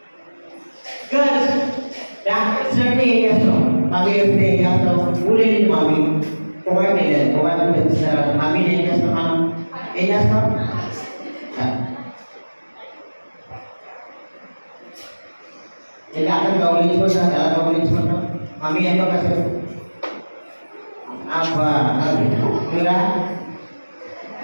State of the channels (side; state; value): both; inverted; correlation -1.00